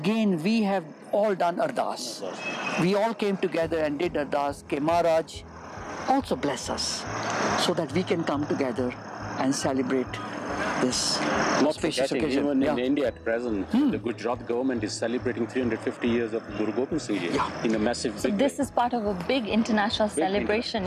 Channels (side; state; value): both; identical; correlation 1.00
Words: we have all done ardas. We all came together and did ardas. Ke Maharaj also bless us, so that we can come together and celebrate this auspicious occasion. Even in India at present, the Gujarat government is celebrating 350 years of Guru Gobind Singh Ji in a massive big This is part of a big international celebration,